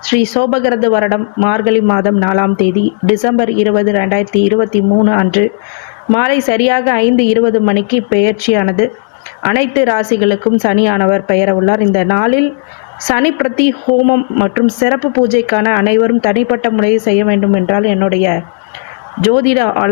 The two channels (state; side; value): silent; right; digital silence